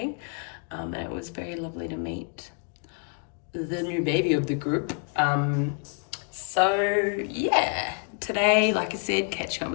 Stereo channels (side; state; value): right; quieter; 37.4 dB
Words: And it was very lovely to meet the new baby of the group. So yeah, today, like I said, catching up